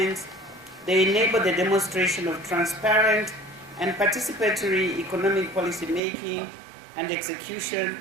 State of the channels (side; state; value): left; drops out; at 6.0 s